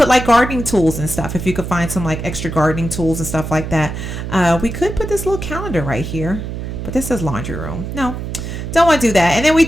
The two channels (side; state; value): right; noise; hum, 6 dB below the sound